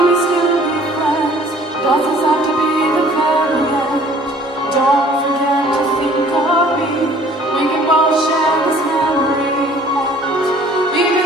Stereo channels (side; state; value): both; normal; correlation 0.54